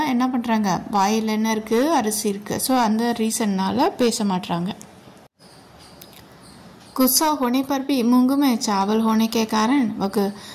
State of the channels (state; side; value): identical; both; correlation 1.00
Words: என்ன பண்ணுறாங்க, வாயில் என்ன இருக்குது, அரிசி இருக்குது. ஸோ அந்த ரீசன்னால் பேச மாட்டுறாங்க. गुस्सा होने पर भी मूंग में चावल होने के कारण वह